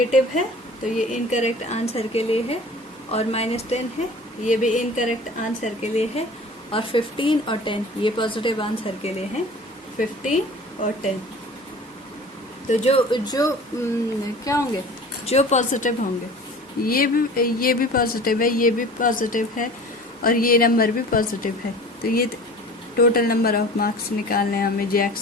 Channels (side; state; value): both; normal; correlation 0.42